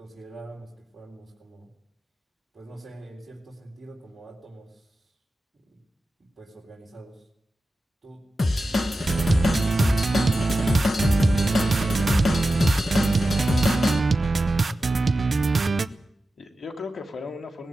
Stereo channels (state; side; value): normal; both; correlation 0.93